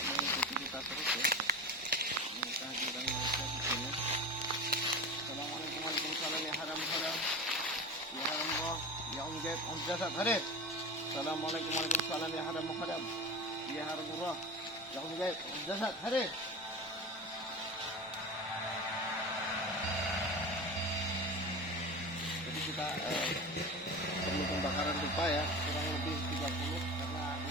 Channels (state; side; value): normal; both; correlation 0.29